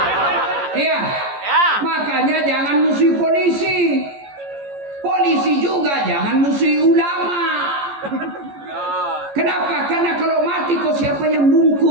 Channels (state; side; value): late; left; 14 ms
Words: Iya. Makanya jangan musuhi polisi. Polisi juga jangan musuhi ulama. Kenapa? Karena kalau mati kok siapa yang